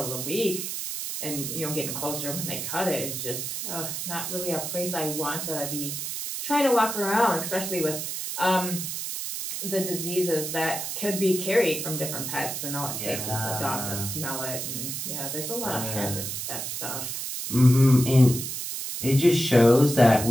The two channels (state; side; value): noise; right; hiss, 5 dB below the sound